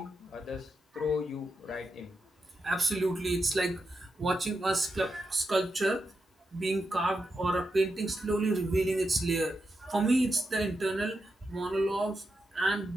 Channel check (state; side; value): normal; both; correlation 0.86